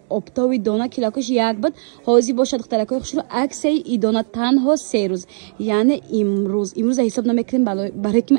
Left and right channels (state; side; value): silent; left; digital silence